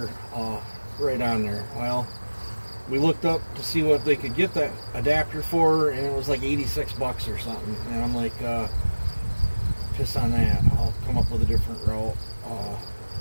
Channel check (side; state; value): both; inverted; correlation -1.00